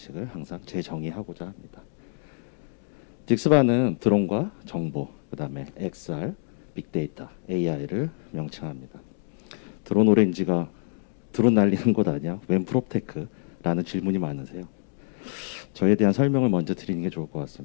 항상 재정의하고자 합니다. 딕스바는 드론과 정보, 그 다음에 XR, 빅데이터, AI를 명칭합니다. 드론 오렌지가 드론 날리는 곳 아니야? 웬 프롭테크? 라는 질문이 많으세요. 저에 대한 설명을 먼저 드리는 게 좋을 것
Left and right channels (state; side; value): silent; right; digital silence